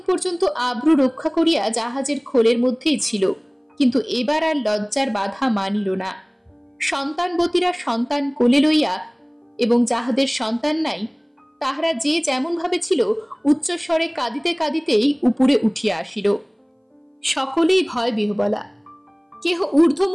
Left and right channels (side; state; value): both; identical; correlation 1.00